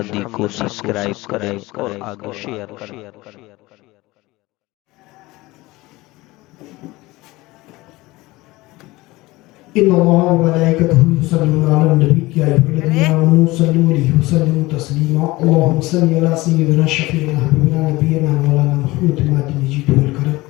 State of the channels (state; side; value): quieter; right; 20.3 dB